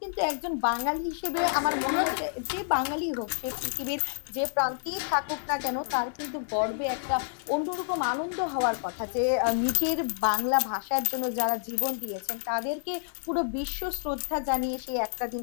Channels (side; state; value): right; silent; digital silence